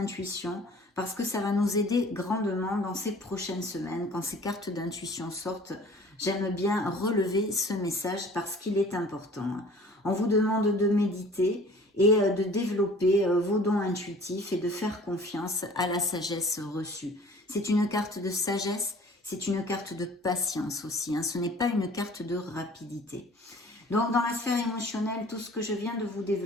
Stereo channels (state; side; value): normal; both; correlation 0.49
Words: parce que ça va nous aider grandement dans ces prochaines semaines. Quand ces cartes d'intuition sortent, j'aime bien relever ce message parce qu'il est important. On vous demande de méditer et de développer vos dons intuitifs et de faire confiance à la sagesse reçue. C'est une carte de sagesse, c'est une carte de patience aussi, hein. Ce n'est pas une carte de rapidité. Donc dans la sphère émotionnelle, tout ce que je viens de vous